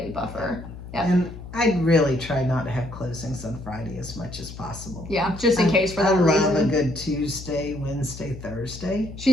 buffer. And I'd really try not to have closings on Friday as much as possible. Just in case for that reason. I love a good Tuesday, Wednesday, Thursday.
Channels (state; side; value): noise; left; hum, 13 dB below the sound